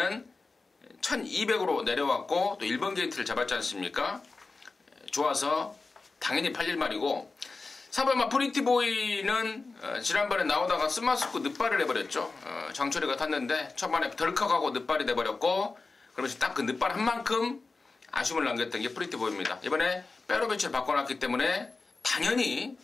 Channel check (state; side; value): quieter; right; 3.8 dB